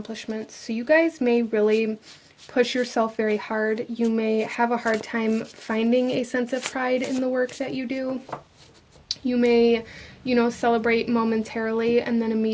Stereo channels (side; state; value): both; identical; correlation 1.00